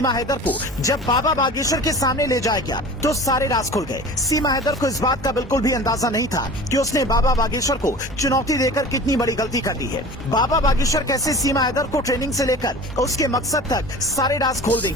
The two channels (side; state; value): both; normal; correlation 0.39